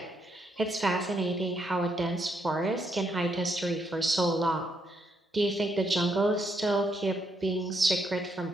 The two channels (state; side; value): normal; both; correlation 0.76